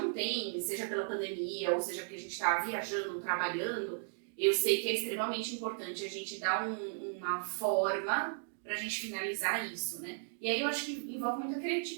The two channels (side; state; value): left; silent; digital silence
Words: tem, seja pela pandemia ou seja porque a gente está viajando, trabalhando, eu sei que é extremamente importante a gente dar uma forma para a gente finalizar isso, né? E aí eu acho que envolve muita